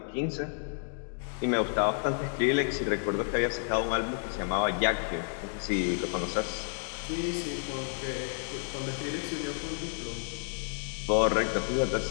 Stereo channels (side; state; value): right; silent; 57 dB below the other